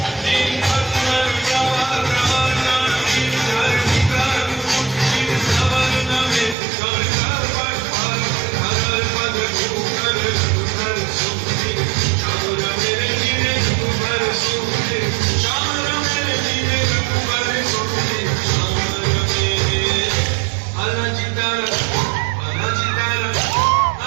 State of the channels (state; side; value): drops out; left; at 6.6 s